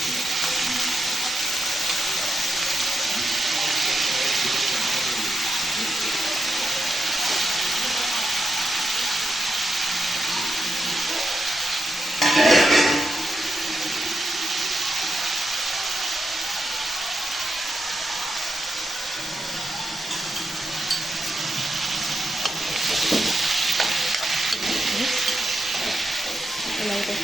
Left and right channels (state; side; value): normal; both; correlation 0.86